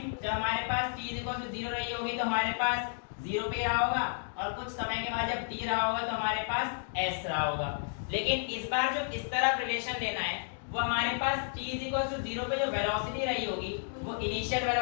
जब हमारे पास t इज इक्वल टू 0 रही होगी तो हमारे पास 0 पे रहा होगा, और कुछ समय के बाद जब t रहा होगा तो हमारे पास s रहा होगा। लेकिन इस बार जो इस तरफ रिलेशन लेना है वो हमारे पास t इज इक्वल टू 0 पे जो वेलोसिटी रही होगी वो इनिशियल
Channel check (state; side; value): silent; right; digital silence